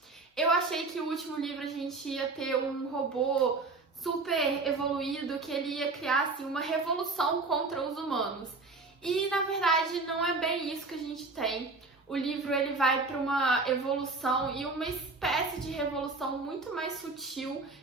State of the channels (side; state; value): left; quieter; 3.7 dB